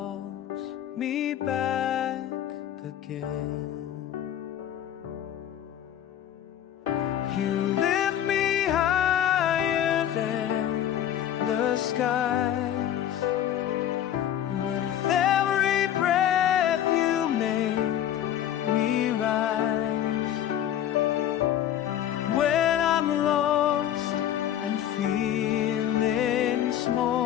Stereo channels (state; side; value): quieter; right; 10.9 dB